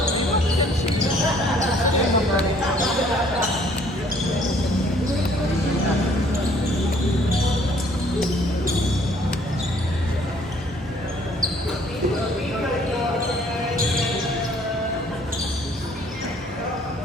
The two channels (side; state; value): both; normal; correlation 0.59